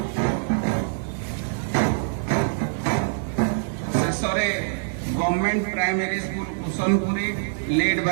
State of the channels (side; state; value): left; silent; digital silence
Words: ଶେଷରେ government primary school Kushanpuri led